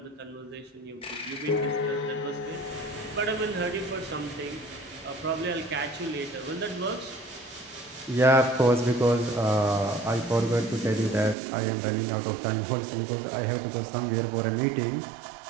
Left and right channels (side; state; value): left; drops out; at 11.4 s